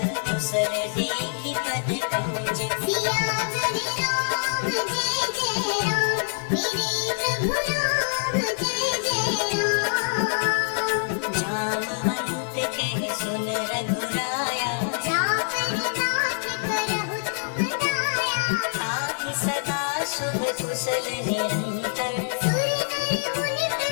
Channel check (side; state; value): right; silent; 62 dB below the other